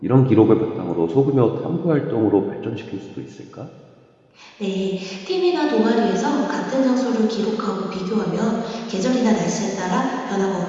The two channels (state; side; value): identical; both; correlation 1.00